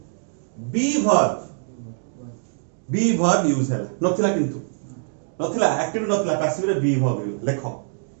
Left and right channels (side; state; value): left; silent; 63 dB below the other